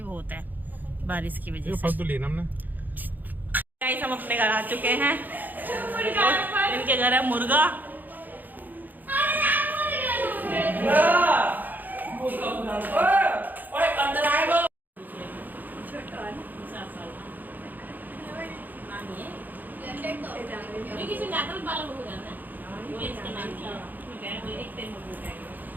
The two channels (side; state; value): left; late; 0.085 ms